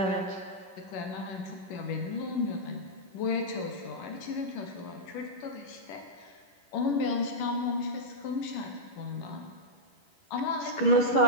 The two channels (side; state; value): right; late; 10 ms